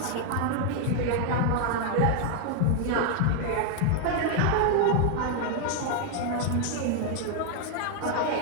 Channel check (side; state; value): both; different; correlation 0.00